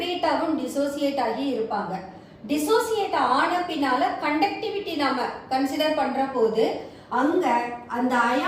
டிசோசியேட் ஆகி இருப்பாங்க. டிசோசியேட் ஆன பின்னால கண்டக்டிவிட்டி நாம கன்சிடர் பண்ற போது அங்க அந்த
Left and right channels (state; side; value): identical; both; correlation 1.00